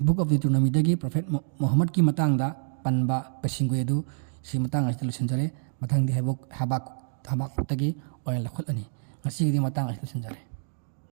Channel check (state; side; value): silent; left; digital silence